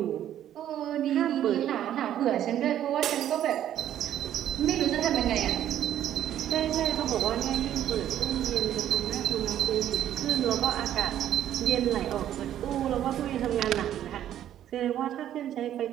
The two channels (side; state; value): left; quieter; 11.3 dB